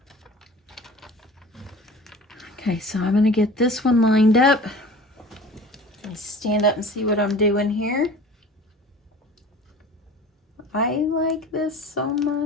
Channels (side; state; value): both; normal; correlation 0.42